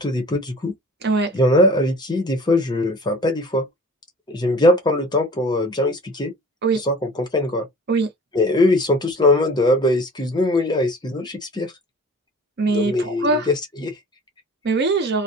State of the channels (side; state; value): both; normal; correlation 0.44